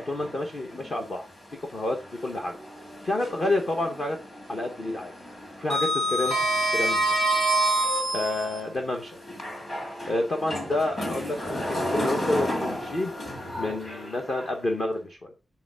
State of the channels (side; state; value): both; normal; correlation 0.79